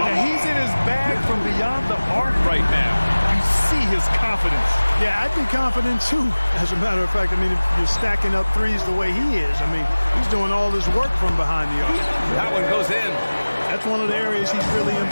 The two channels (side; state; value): both; inverted; correlation -1.00